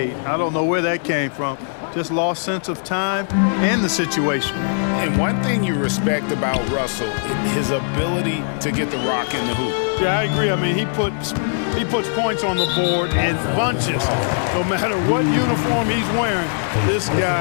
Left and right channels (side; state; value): right; silent; 66 dB below the other